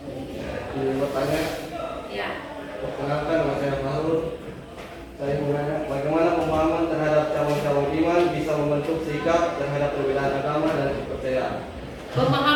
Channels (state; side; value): identical; both; correlation 1.00